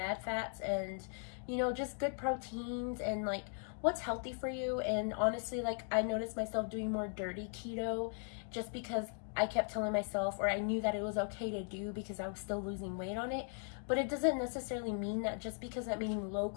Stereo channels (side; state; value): right; silent; 52 dB below the other